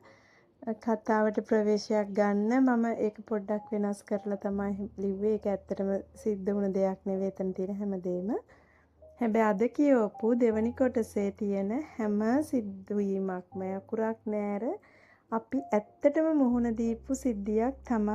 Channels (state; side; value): identical; both; correlation 1.00